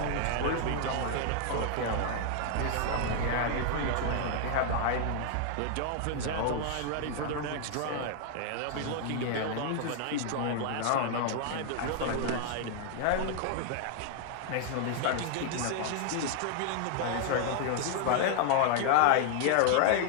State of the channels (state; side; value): different; both; correlation 0.00